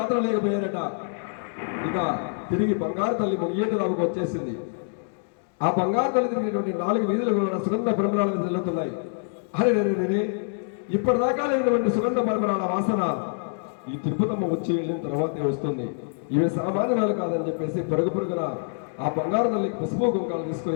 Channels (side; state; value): right; silent; 61 dB below the other